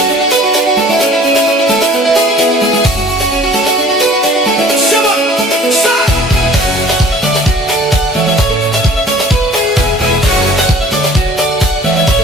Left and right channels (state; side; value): normal; both; correlation 0.50